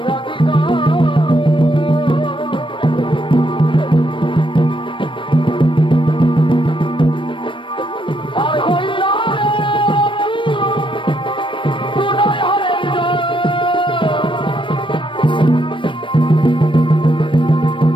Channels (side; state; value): right; late; 0.25 ms